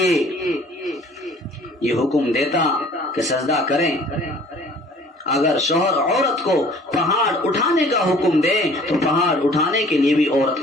یہ حکم دیتا کہ سجدہ کریں۔ اگر شوہر عورت کو پہاڑ اٹھانے کا حکم دے تو پہاڑ اٹھانے کے لیے بھی عورت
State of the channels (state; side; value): normal; both; correlation 0.52